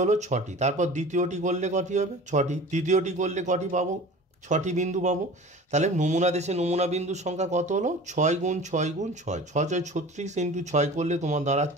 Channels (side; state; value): both; normal; correlation 0.40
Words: হলো? 6টি। তারপর দ্বিতীয়টি করলে কটি হবে? 6টি। তৃতীয়টি করলে কটি পাবো? 6টি বিন্দু পাবো। তাহলে নমুনা দেশে নমুনা বিন্দুর সংখ্যা কত হলো? 6 গুণ 6 গুণ 6 6 6 36 ইন্টু 6 করলে তোমার